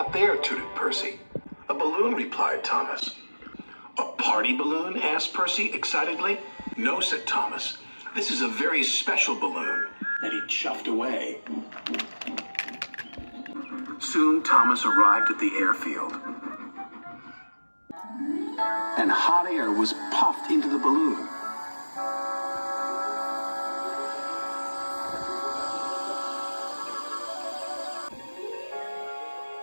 there?" tooted Percy. "A balloon," replied Thomas. "A party balloon?" asked Percy excitedly. "No," said Thomas. "This is a very special balloon." And he chuffed away. Soon Thomas arrived at the airfield. And hot air was puffed into the balloon.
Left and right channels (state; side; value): inverted; both; correlation -1.00